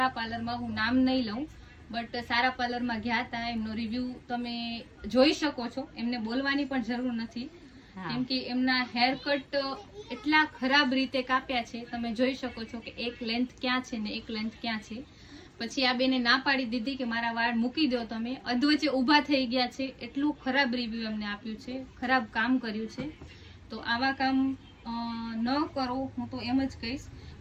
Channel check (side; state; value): both; identical; correlation 1.00